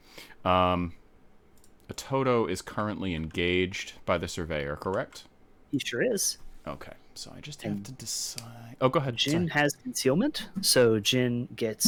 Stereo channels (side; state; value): both; identical; correlation 1.00